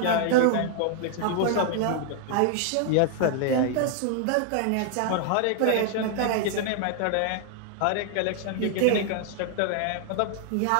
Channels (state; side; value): different; both; correlation 0.00